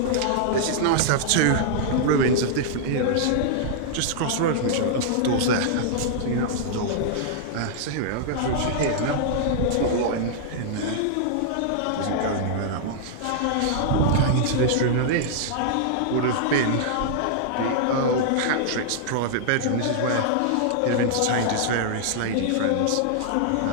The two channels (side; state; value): both; different; correlation -0.01